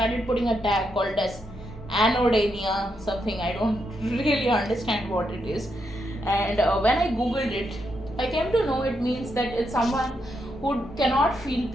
putting a tag called as anodemia, something I don't really understand what it is. And when I googled it, I came to know it means that it's someone who cannot feel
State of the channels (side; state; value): both; normal; correlation 0.81